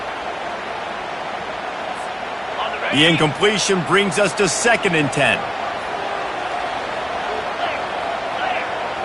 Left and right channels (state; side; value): identical; both; correlation 1.00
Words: The incompletion brings us to 2nd and 10.